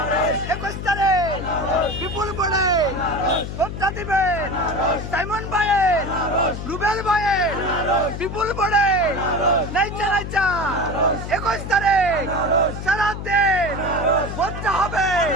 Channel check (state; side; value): noise; left; hum, 7 dB below the sound